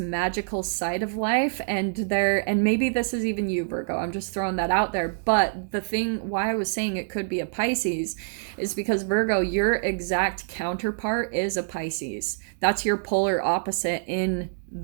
side of life, and maybe this is even you, Virgo. I'm just throwing that out there. But the thing why I was saying it could be a Pisces is because Virgo, your exact counterpart is a Pisces. That's your polar opposite in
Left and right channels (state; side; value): silent; left; digital silence